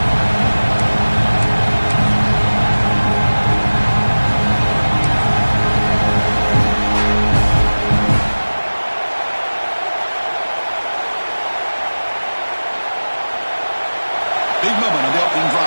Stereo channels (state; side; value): inverted; both; correlation -1.00